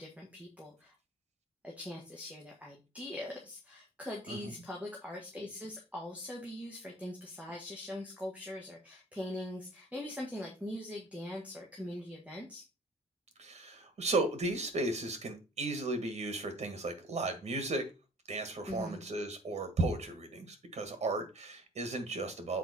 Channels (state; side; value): normal; both; correlation 0.49